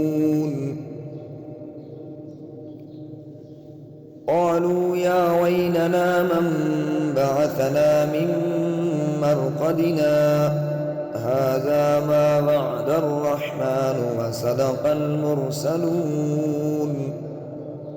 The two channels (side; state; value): both; identical; correlation 1.00